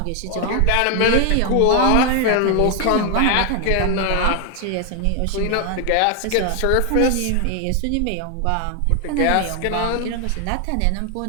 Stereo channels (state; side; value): different; both; correlation 0.00